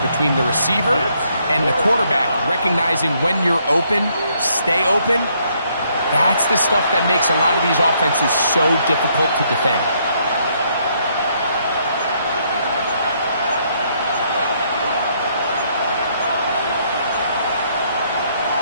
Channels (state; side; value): inverted; both; correlation -0.71